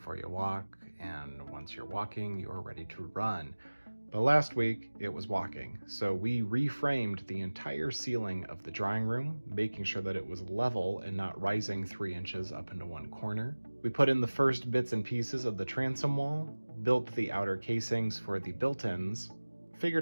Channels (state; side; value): inverted; both; correlation -1.00